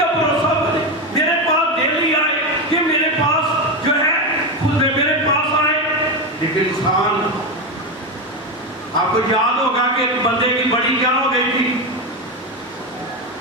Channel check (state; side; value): normal; both; correlation 0.14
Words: بھروسہ بنے، میرے پاس ڈیلی آئے، کہ میرے پاس جو ہے خود میرے پاس آئے۔ لیکن انسان، آپ کو یاد ہوگا کہ ایک بندے کی بڑی کیا ہو گئی تھی؟